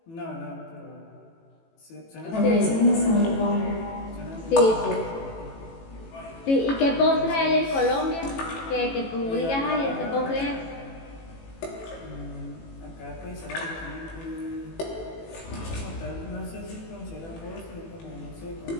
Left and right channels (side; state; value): right; late; 18 ms